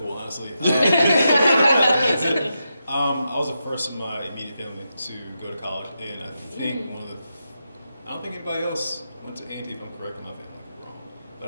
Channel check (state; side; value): inverted; both; correlation -0.86